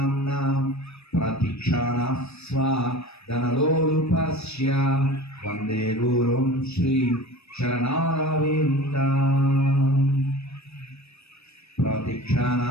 ప్రతిక్షణ స్వాదనలోలుపస్య వందే గురుం శ్రీ చరణారవిందం. ప్రతిక్షణ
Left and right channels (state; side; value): late; right; 0.79 ms